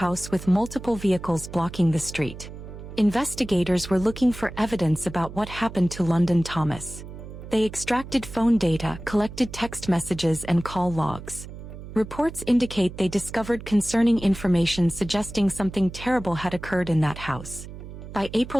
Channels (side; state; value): right; noise; hum, 13 dB below the sound